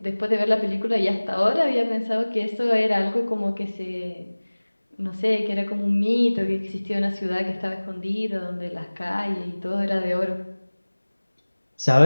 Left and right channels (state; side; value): inverted; both; correlation -1.00